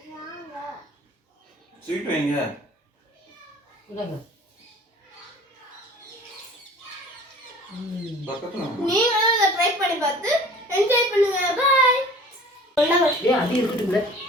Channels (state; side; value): normal; both; correlation 0.45